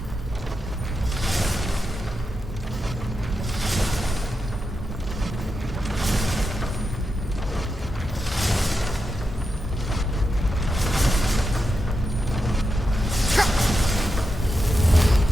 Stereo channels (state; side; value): normal; both; correlation 0.87